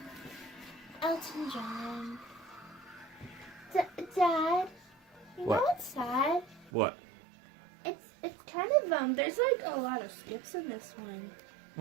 Elton John. Dad, you What? know what's sad? What? It's kind of there's like a lot of skips in this one.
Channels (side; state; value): left; drops out; at 6.7 s